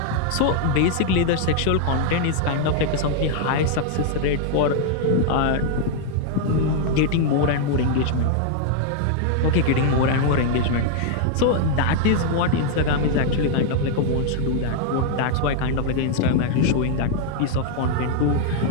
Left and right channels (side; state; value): both; different; correlation 0.00